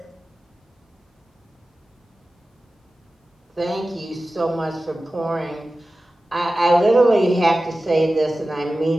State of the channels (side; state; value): both; normal; correlation 0.95